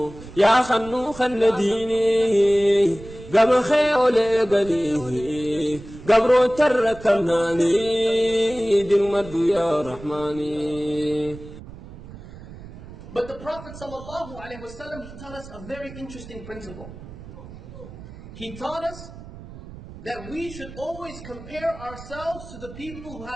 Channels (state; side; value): noise; right; rumble, 15 dB below the sound